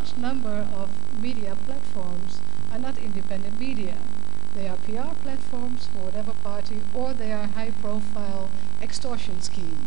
number of media platforms are not independent media. They are PR platforms for whatever party, or they are high-profile extortion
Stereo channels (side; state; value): left; quieter; 8.4 dB